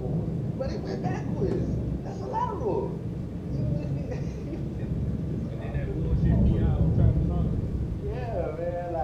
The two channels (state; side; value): identical; both; correlation 1.00